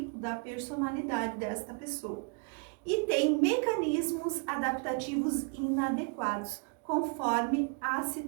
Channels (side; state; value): left; quieter; 35.5 dB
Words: da personalidade desta pessoa. E tem mecanismos adaptativos inadequados, conforme a